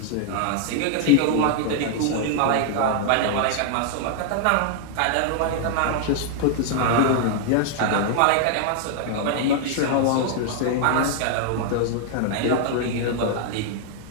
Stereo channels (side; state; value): both; different; correlation 0.00